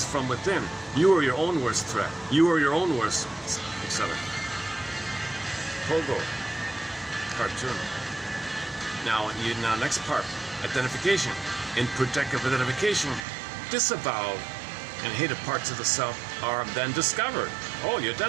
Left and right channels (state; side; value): drops out; left; at 13.2 s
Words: from within. You are your own worst threat. You are your own worst, etc. Pogo. Cartoon. Now, next part. Identification. In projective identification, disavowed and hated parts of the self are then discovered. Oh, you